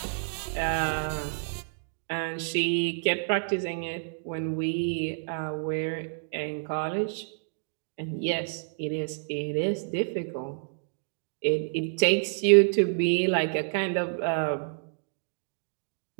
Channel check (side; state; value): left; silent; digital silence